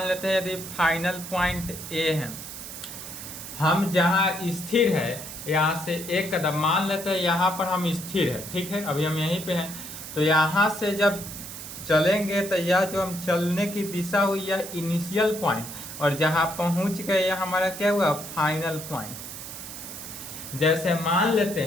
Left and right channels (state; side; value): noise; right; hiss, 10 dB below the sound